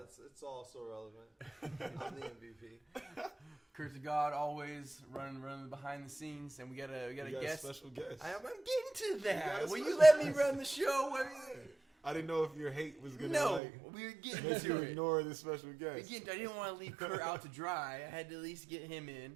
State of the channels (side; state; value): left; drops out; at 13.6 s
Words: also relevant. I'm the MVP. Kurt to God, always running behind the scenes, and we got a guest. Special guest. I'm getting to that. Will you special let me guest. run the show? I didn't know if your hate was gonna No, we were getting make you to it. ignore this special guest. Again, I didn't want to leave Kurt out to dry. I had to at least get him